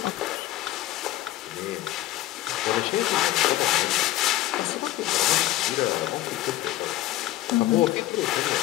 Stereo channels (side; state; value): right; quieter; 15.4 dB